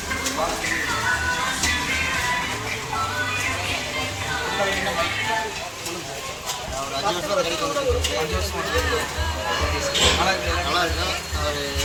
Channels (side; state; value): both; identical; correlation 1.00